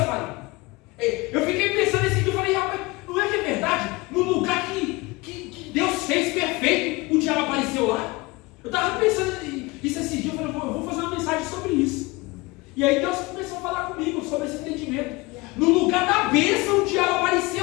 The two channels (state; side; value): quieter; right; 23.3 dB